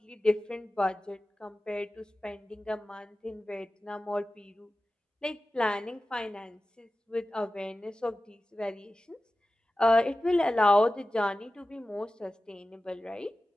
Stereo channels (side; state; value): both; normal; correlation 0.95